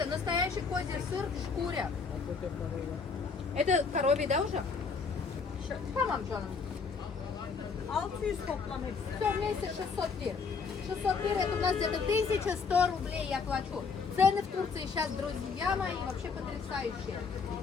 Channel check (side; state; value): right; quieter; 5.1 dB